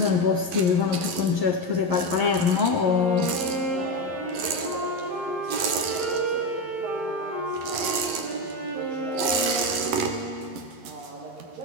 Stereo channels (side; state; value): left; late; 11 ms